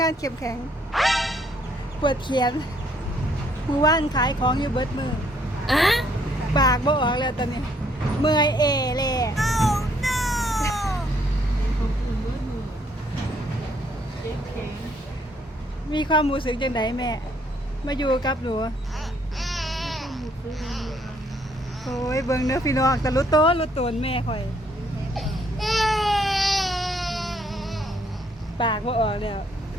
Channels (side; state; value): both; normal; correlation 0.67